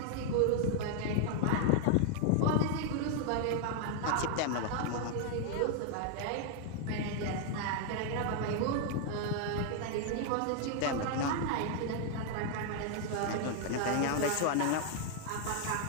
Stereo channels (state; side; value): different; both; correlation 0.00